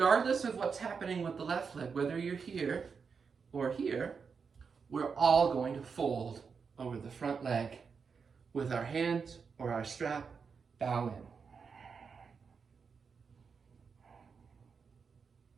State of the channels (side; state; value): left; quieter; 5.7 dB